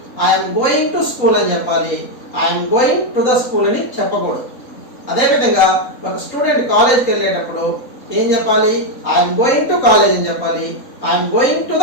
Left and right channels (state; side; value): late; right; 3.8 ms